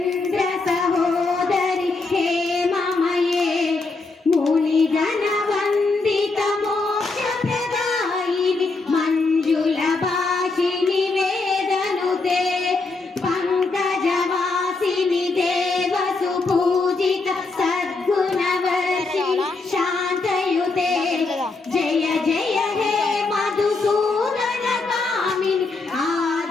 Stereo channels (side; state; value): right; quieter; 3.7 dB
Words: सहोदरी हेममये मुनिगण वंदित मोक्ष प्रदायिनी मंजुल भाषिणी वेदनुते पंकजवासिनी देव सुपूजित सद्गुणवर्षिणी शांतयुते जय जय हे मधुसूदन कामिनी